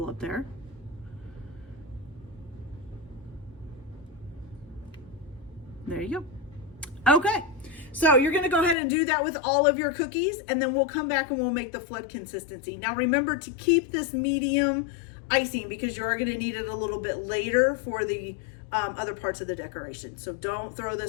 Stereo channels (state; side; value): drops out; right; at 8.8 s